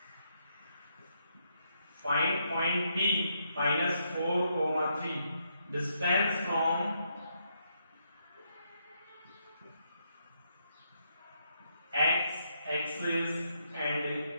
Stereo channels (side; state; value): both; inverted; correlation -0.78